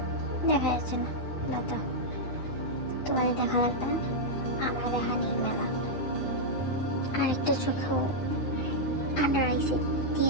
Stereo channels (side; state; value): right; late; 9.6 ms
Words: দেখা যাচ্ছে না দাদা, তোমাদের দেখা লাগবে না, আমার দেখা নেই মেলা। আরেকটা চোখেও আন্ডার আইসে